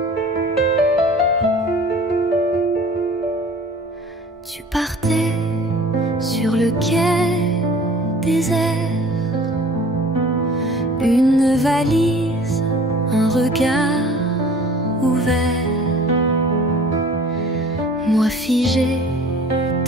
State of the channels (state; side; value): normal; both; correlation 0.47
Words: Tu partais sur le quai désert, une valise, un regard ouvert. Moi figé